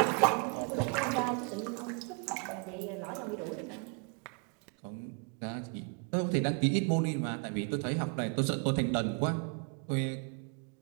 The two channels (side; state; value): left; quieter; 36.0 dB